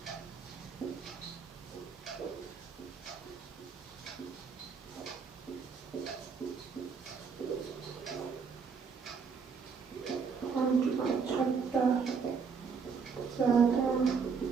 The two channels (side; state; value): left; quieter; 5.7 dB